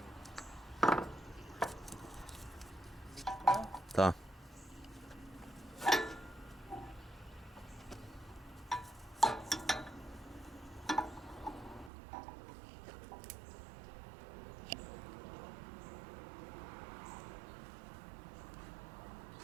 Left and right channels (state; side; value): drops out; left; at 11.9 s